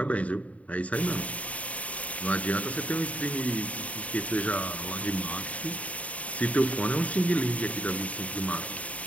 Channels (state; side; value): late; right; 0.068 ms